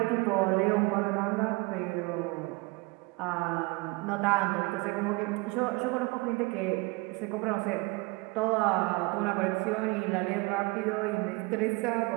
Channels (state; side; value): quieter; left; 25.5 dB